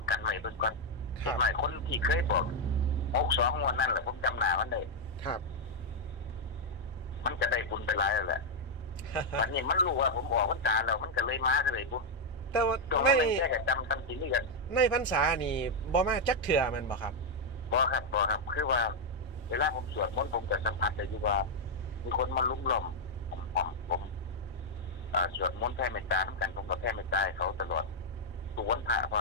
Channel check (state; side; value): normal; both; correlation 0.00